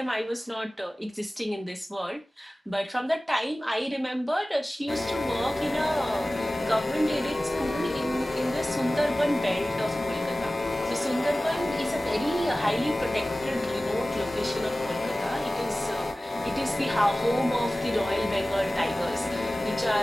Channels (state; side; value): normal; both; correlation 0.97